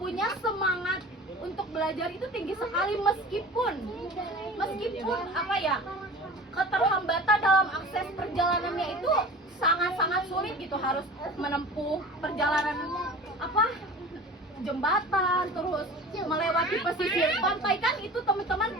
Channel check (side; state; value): both; normal; correlation 0.38